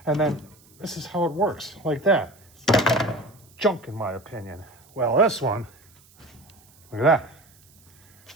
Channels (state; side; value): noise; right; hiss, 28 dB below the sound